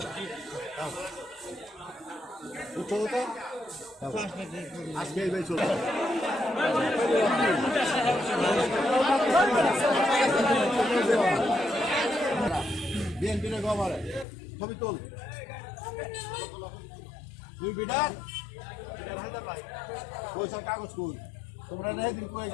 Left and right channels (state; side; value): drops out; right; at 14.2 s